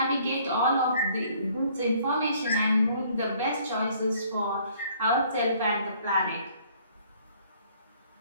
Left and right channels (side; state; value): both; inverted; correlation -0.60